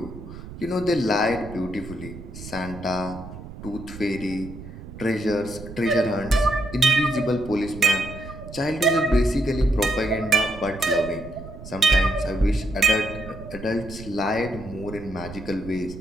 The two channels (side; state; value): right; noise; rumble, 13 dB below the sound